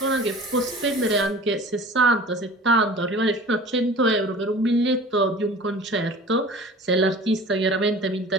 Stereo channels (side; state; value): both; normal; correlation 0.42